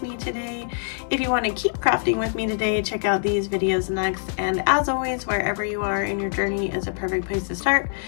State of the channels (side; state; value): right; silent; digital silence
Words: me today. If you want to keep crafting with me today, check out these videos next. And as always, wherever you are in your journey is a perfect place to start.